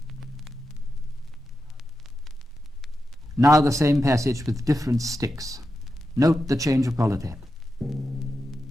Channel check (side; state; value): both; normal; correlation 0.89